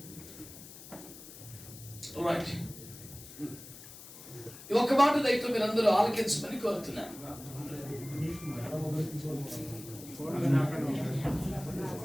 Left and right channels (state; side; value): noise; left; hiss, 16 dB below the sound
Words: ఈ ఒక్క మాట దయతో మీరందరూ ఆలకించమని కోరుతున్నాను.